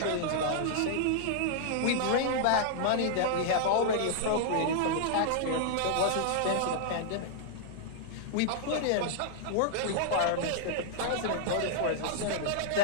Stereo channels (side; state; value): both; different; correlation -0.01